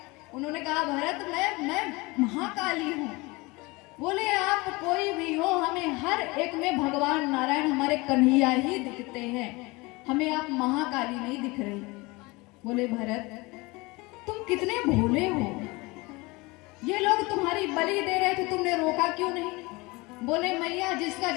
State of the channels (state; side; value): quieter; right; 24.1 dB